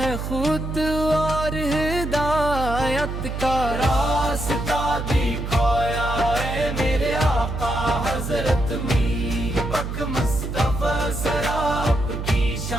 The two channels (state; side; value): noise; right; hum, 5 dB below the sound